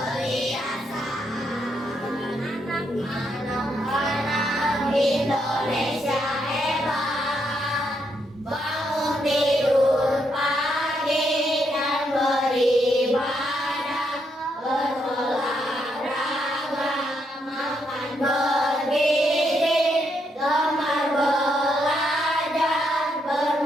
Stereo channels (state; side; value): normal; both; correlation 0.78